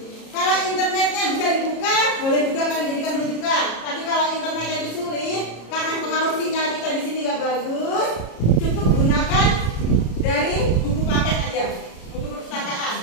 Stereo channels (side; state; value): right; late; 33 ms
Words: Kalau internetnya bisa dibuka, boleh juga kalian jadikan rujukan. Tapi kalau internetnya itu sulit, karena pengaruh sinyal kita di sini nggak bagus, cukup gunakan dari buku paket aja, buku perpustakaan.